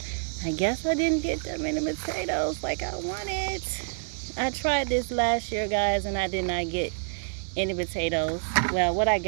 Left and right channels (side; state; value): left; silent; digital silence